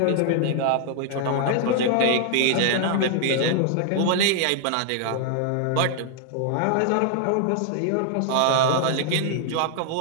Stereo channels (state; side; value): different; both; correlation 0.00